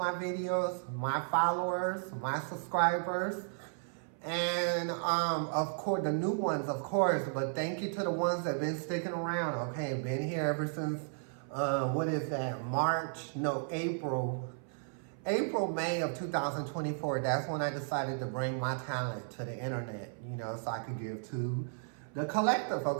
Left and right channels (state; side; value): silent; left; 55 dB below the other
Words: videos, my followers, my subscribers, and of course, the new ones, of course, but thank you to the ones that been sticking around, okay? Been here ever since, what is that, April, May of 2024, that's when I decided to bring my talent to the internet, you know, so I could give to the collective,